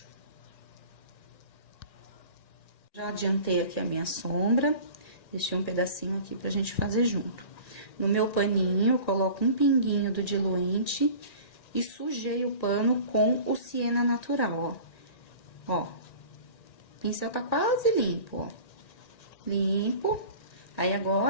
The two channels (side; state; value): right; late; 1.9 ms